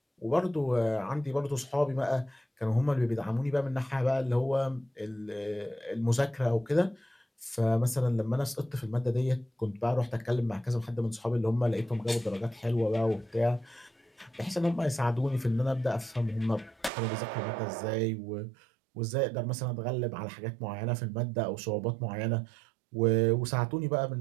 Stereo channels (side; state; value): left; drops out; at 16.9 s